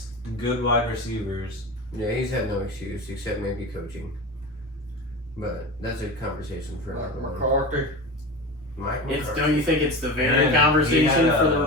Good wide receivers. Yeah, he's had no excuse except maybe coaching. But that's a conversation for another one. McCarthy. Mike It's McCarthy. don't you think it's the very And conversation he had, for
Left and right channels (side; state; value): both; normal; correlation 0.27